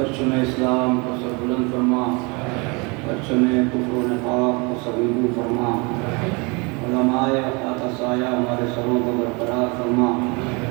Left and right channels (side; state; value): left; quieter; 29.4 dB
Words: اسلام کو سر بلند فرما پرچم کفر و نفاق کو سبیبو فرما علماء خاکہ سایہ ہمارے سروں کو برقرار فرما